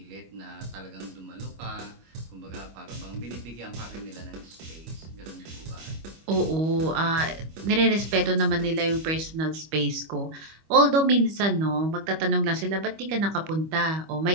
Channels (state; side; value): late; left; 25 ms